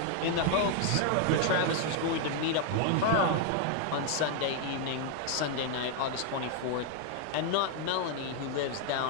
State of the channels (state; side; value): different; both; correlation 0.00